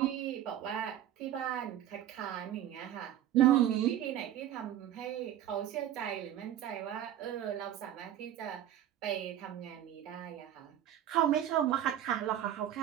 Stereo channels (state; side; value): quieter; left; 11.4 dB